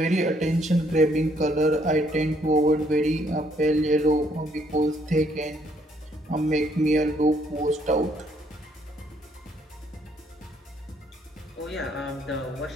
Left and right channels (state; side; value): normal; both; correlation 0.68